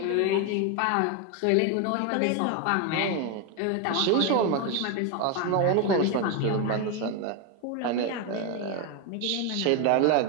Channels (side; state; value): both; different; correlation 0.02